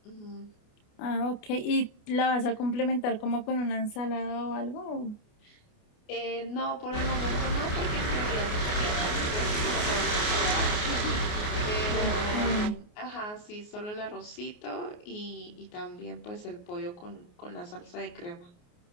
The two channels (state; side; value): late; right; 29 ms